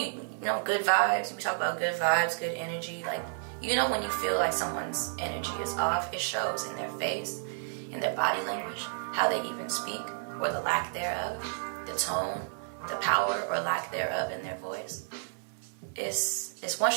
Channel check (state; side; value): silent; left; digital silence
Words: good vibes. We talk about good vibes, good energy. When you feel like someone's energy is off, it shows in their face, in their body language, how they even speak, or the lack thereof, the tone, the power or lack thereof in their voice. It's once